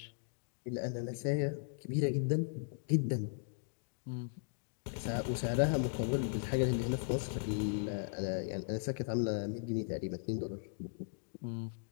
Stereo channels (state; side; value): silent; right; digital silence